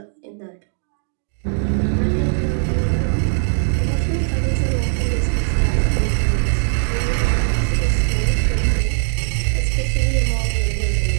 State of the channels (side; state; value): left; silent; digital silence